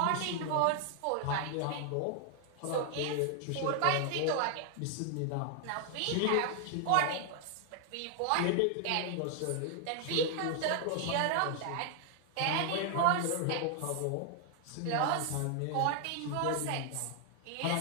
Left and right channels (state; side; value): different; both; correlation 0.00